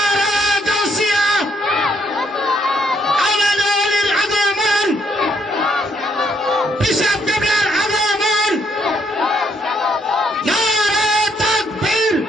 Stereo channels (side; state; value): both; normal; correlation 0.72